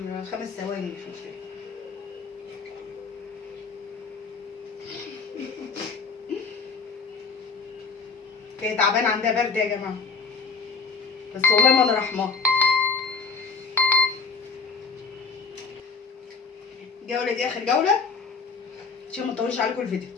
5 ثواني مش مشكلة. هي تعبانة عندها برد يا جماعة، بس والله ما أنا رحماها. الجولة دي آخر جولة عشان ما نطولش عليكم الفيديو،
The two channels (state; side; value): quieter; right; 4.9 dB